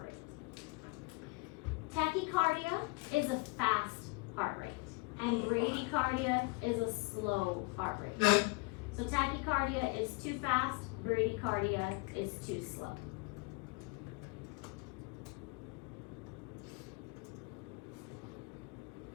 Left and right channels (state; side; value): quieter; right; 29.1 dB